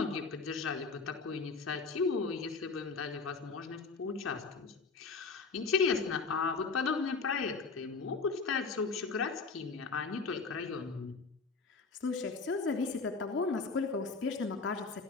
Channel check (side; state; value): right; quieter; 4.5 dB